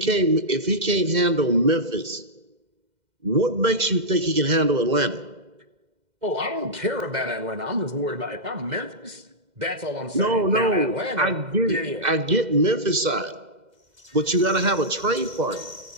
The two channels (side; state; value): left; late; 2.0 ms